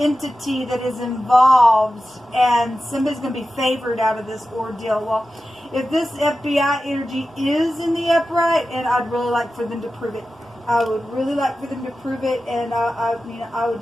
that is involved, and somebody's going to be favored out of this ordeal. Well, if this FBI energy is in the upright, and I'd really like for them to prove it. I would really like for them to prove it, and I would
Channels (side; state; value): both; normal; correlation 0.93